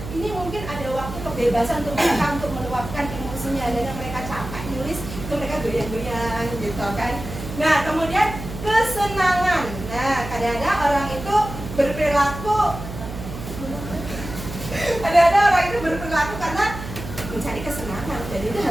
ini mungkin ada waktu kebebasan untuk mereka untuk meluapkan emosinya. Dan mereka capek nulis, itu mereka goyang-goyang gitu kan. Nah, kemudian kesenangan. Nah, kadang-kadang orang itu berperilaku karena mencari kesenangan, dan itu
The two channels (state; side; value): noise; right; hum, 10 dB below the sound